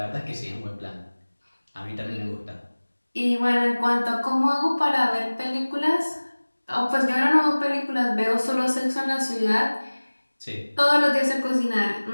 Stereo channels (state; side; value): inverted; both; correlation -1.00